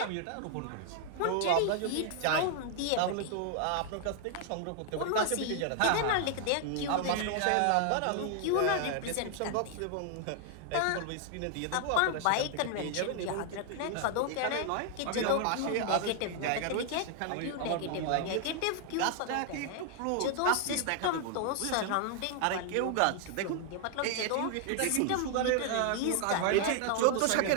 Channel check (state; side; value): different; both; correlation 0.00